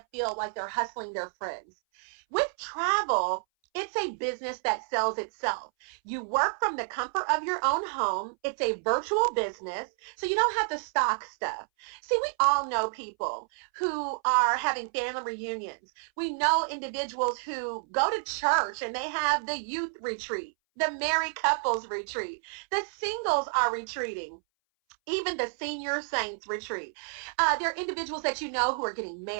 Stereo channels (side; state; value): left; silent; 58 dB below the other